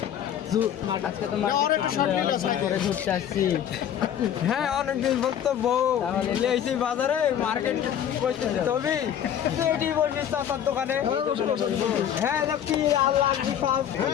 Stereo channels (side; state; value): right; quieter; 9.7 dB